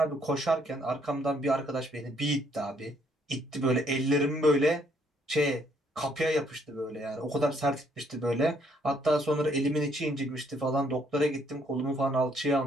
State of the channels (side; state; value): both; normal; correlation 0.68